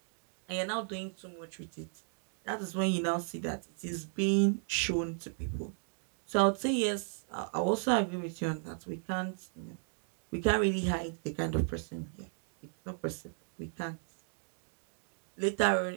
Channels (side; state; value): left; silent; 54 dB below the other